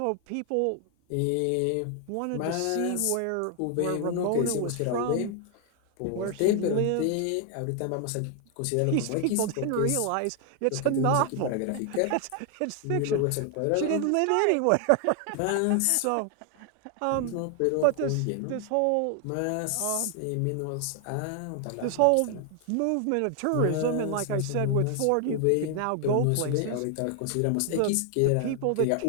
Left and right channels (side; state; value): both; different; correlation 0.00